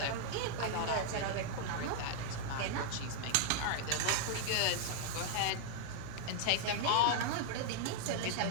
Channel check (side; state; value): both; different; correlation -0.01